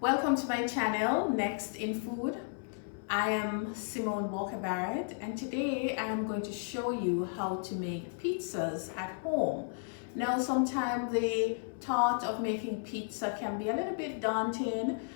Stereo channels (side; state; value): right; silent; 55 dB below the other